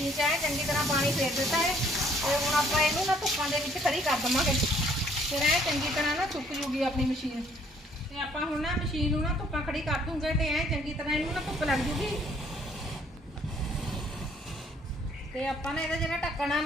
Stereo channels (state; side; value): normal; both; correlation 0.62